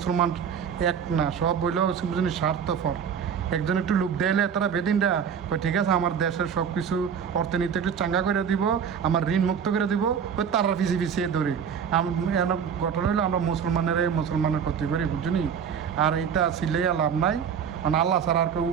এক না, সব বইলেও স্বার্থপর। একজন একটু লোক দিলে তারা বেদিনটা ঠিক আছে, আমার দেশের সব কিছু অর্থনীতি একটু চাঙ্গা করে দিব, আমার ঋণ মুক্ত করে দিব, ওই তারা পিছিয়ে ধরি। ঘটনা হলো আমরা মুসলমানের ক্ষতি করি, বুঝলি? আর এটা ছিলেই লাভ নাই, মানে আল্লাহ ছাড়া আর কেউ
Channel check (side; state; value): left; quieter; 7.4 dB